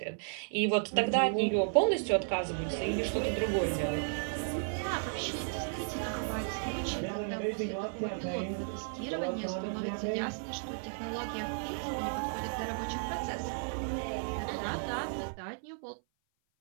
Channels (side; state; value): left; silent; 55 dB below the other